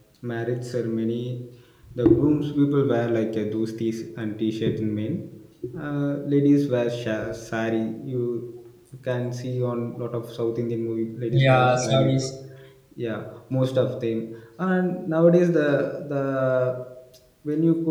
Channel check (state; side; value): identical; both; correlation 1.00